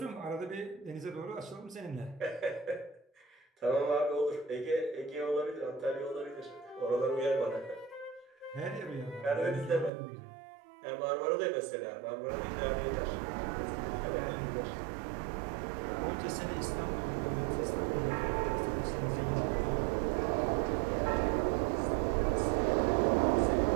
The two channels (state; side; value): drops out; left; at 9.9 s